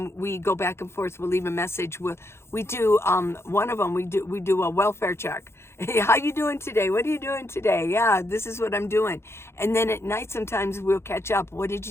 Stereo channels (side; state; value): right; late; 0.12 ms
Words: we go back and forth. We'll leave a message. We do one of them. We do a welfare check. Hey, how you doing today? What are you doing today? Yeah, this is what I'm doing. And then at night, sometimes we'll catch up. What did